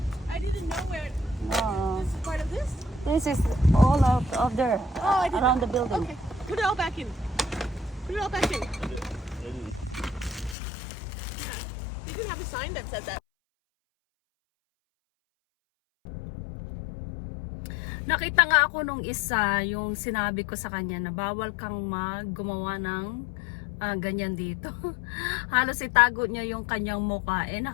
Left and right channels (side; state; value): right; drops out; at 10.6 s